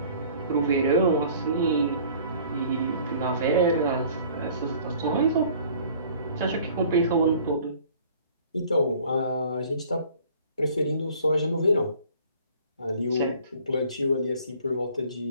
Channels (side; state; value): both; inverted; correlation -0.52